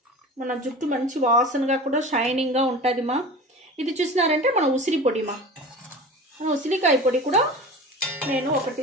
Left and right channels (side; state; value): both; normal; correlation 0.35